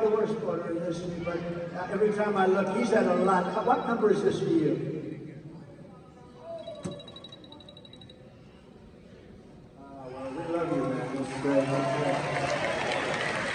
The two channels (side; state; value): both; identical; correlation 1.00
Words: the worst border in history, but every time I look, he's at a lot. What number is this for you? Well, we love you, man. That's great.